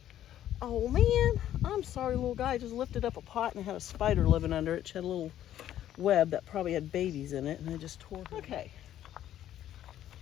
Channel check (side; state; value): right; quieter; 11.8 dB